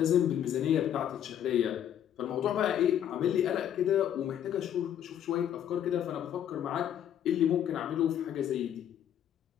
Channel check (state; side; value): quieter; right; 10.0 dB